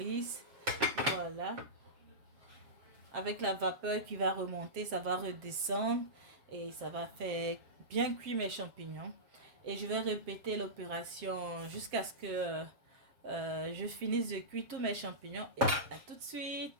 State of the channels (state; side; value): late; left; 7.6 ms